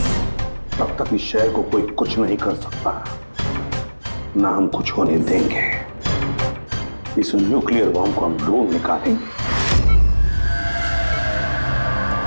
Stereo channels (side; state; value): both; inverted; correlation -1.00